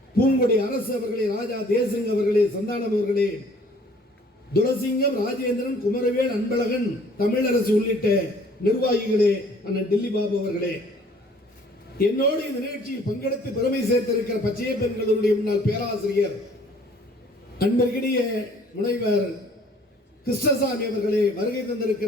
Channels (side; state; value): both; normal; correlation 0.56